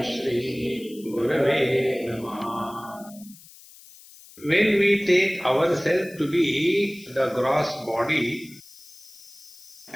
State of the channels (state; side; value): noise; left; hiss, 21 dB below the sound